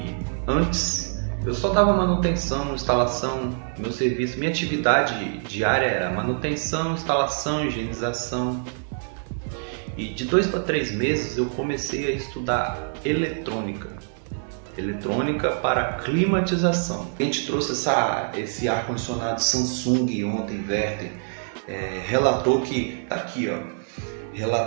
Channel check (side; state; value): left; silent; digital silence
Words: Antes, eu só dava manutenção, instalação, meu serviço, minha atividade diária era manutenção, instalação, higienização. E de 2 para 3 meses eu comecei a estudar eletrônica. Eletrônica para climatização. A gente trouxe esse ar-condicionado Samsung ontem, Verter, relatou que, tá aqui ó,